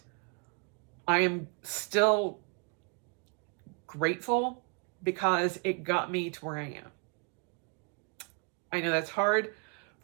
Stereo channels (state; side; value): quieter; left; 36.8 dB